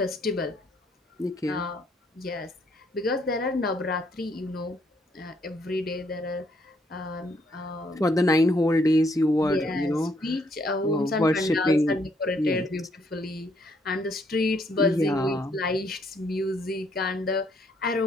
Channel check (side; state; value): both; normal; correlation 0.70